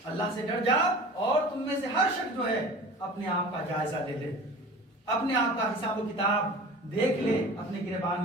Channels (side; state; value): both; normal; correlation 0.39